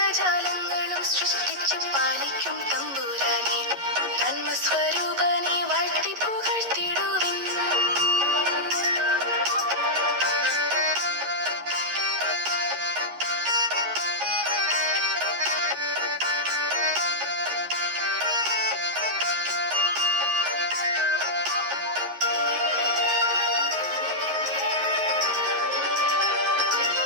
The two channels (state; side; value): late; left; 11 ms